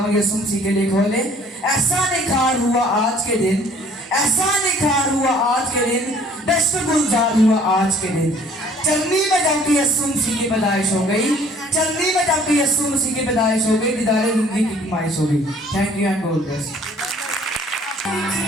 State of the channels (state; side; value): normal; both; correlation 0.55